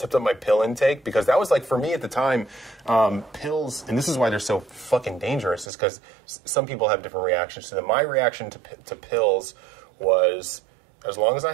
intake, because that was like, for me at the time, pills, and this is why they're so fucking dangerous, is because some people have different reactions to them. My reaction to pills was, as long as I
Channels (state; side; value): drops out; left; at 5.7 s